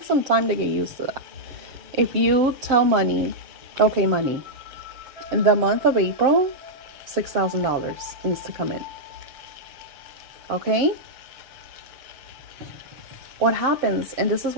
some time to get used to that. If you tell money, okay, money, in the month of April, $6,000 needs to come in. Okay? What happens, and this is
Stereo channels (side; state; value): left; late; 7.7 ms